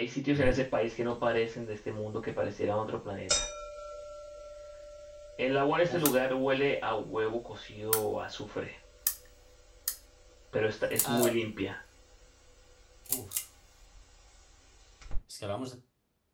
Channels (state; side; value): identical; both; correlation 1.00